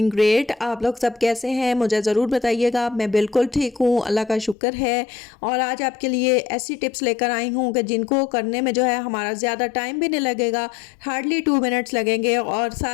great. आप लोग सब कैसे हैं मुझे ज़रूर बताइएगा। मैं बिल्कुल ठीक हूँ, अल्लाह का शुक्र है। और आज आपके लिए ऐसी टिप्स लेकर आई हूँ कि जिनको करने में जो है हमारा ज़्यादा टाइम भी नहीं लगेगा, हार्डली 2 मिनट्स लगेंगे और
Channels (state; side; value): drops out; right; at 4.5 s